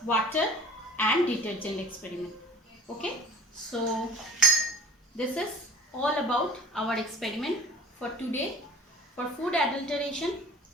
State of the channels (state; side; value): normal; both; correlation 0.44